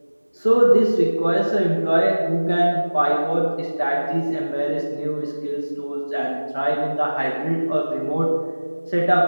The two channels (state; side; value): inverted; both; correlation -1.00